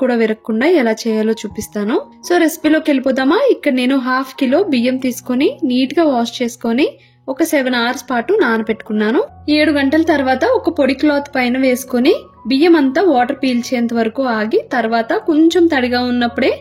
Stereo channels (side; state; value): both; identical; correlation 1.00